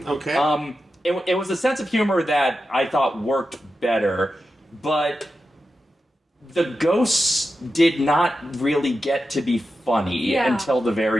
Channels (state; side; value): normal; both; correlation 0.90